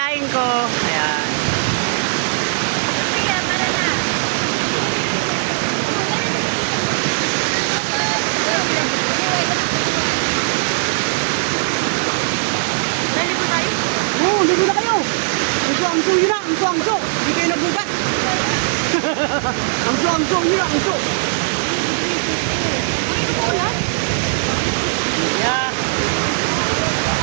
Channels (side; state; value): left; silent; 58 dB below the other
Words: ko. Ayan. Sige, para na. Dali po tayo? Oo, ligo na kayo. Angso, yun na. Angso. Hindi kayo nagbugat. Angso, yun na. Angso. Yeah.